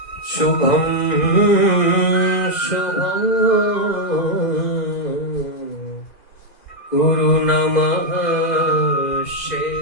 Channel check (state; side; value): late; right; 2.0 ms